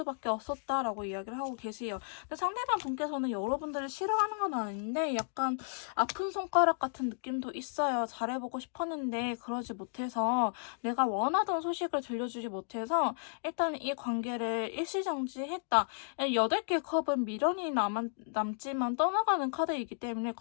없었다라고 이야기를 하고 계세요. 근데 상대방 분께서는 여러분들을 싫어하는 건 아닌데 약간 아픈 손가락 같은 느낌도 있어요. 잘해보고 싶었는데 그러지 못해서, 내가 원하던 소식을 들려주지 못해서 일단 이 관계를 일시정지했다. 8개 컵은 미련이 남지만 떠나가는 카드이기 때문에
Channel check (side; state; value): right; silent; digital silence